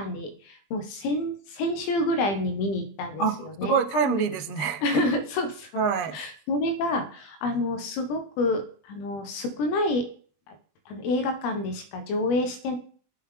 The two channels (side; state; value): right; late; 20 ms